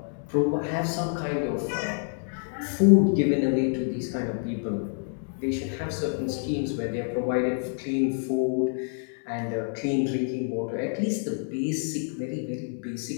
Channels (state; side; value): silent; right; 60 dB below the other